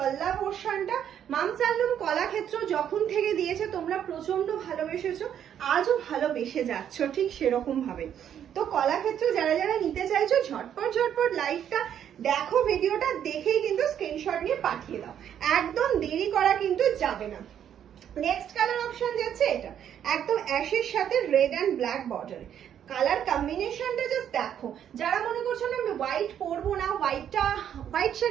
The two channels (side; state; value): left; quieter; 9.5 dB